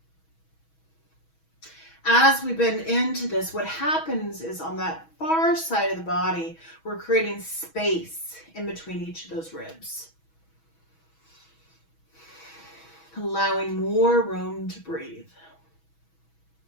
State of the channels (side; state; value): right; late; 6.2 ms